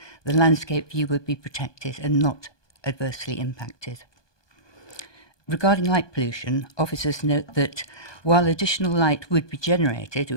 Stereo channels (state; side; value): late; right; 1.2 ms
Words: the landscape view would be protected and not adversely impacted. Regarding light pollution, officers note that while additional light would be generated, it